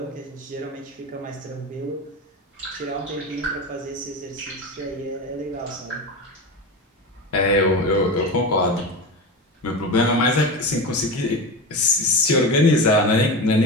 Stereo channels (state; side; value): normal; both; correlation 0.24